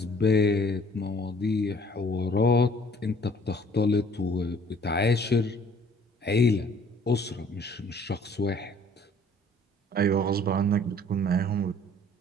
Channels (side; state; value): both; normal; correlation 0.56